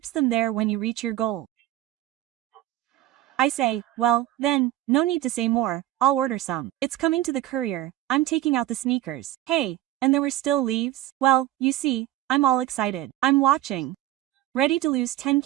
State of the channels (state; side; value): quieter; left; 14.6 dB